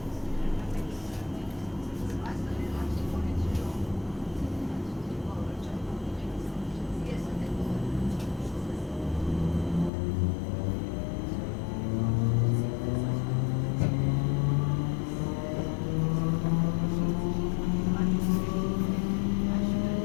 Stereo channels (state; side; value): drops out; right; at 9.9 s